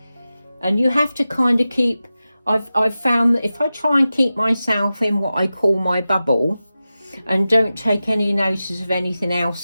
and you have to kind of keep, I've found that if I try and keep myself in what I call my bubble and don't take any notice of anything else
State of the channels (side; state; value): both; inverted; correlation -0.94